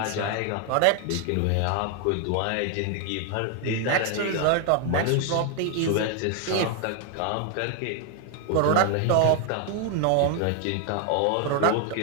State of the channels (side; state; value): both; different; correlation 0.00